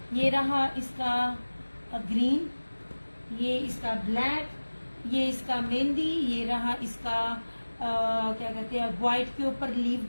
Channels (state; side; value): inverted; both; correlation -1.00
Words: ये रहा इसका ग्रीन, ये इसका ब्लैक, ये इसका मेहंदी, ये रहा इसका क्या कहते हैं व्हाइट के ऊपर लीफ